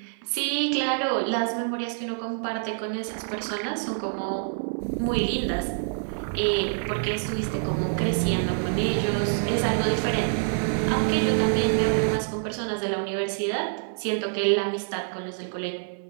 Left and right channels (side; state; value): left; silent; 55 dB below the other